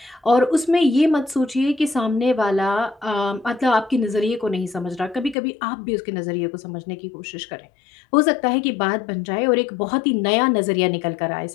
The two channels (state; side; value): drops out; right; at 5.4 s